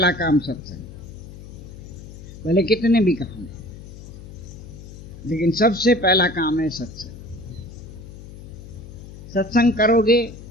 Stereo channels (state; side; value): noise; left; hum, 15 dB below the sound